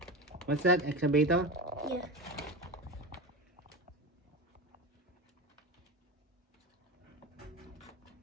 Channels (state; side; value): normal; both; correlation 0.24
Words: What's that? Excavator? Yeah.